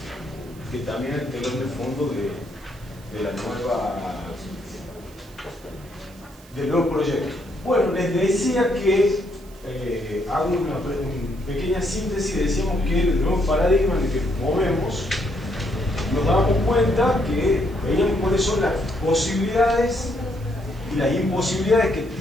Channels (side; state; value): right; noise; hiss, 25 dB below the sound